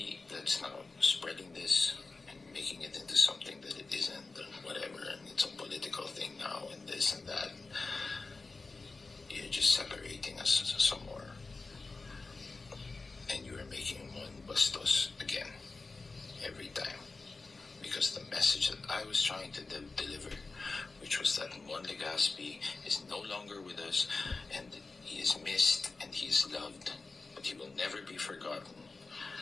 that's now spreading this and making it into something that it isn't, and whatever, and it's a political thing now, and this and that, you're just separating us some more. And you are making one Bastos again, every time. Because the message that I was trying to deliver, which was that Mon Legaspi is no longer with us, and he is missed, and he is loved, but he will never be forgotten,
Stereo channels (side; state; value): right; quieter; 3.8 dB